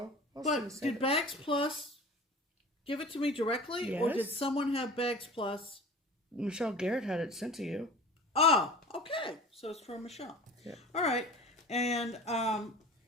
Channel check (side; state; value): both; normal; correlation 0.39